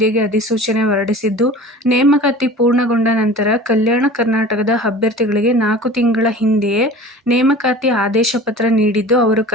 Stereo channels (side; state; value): both; normal; correlation 0.40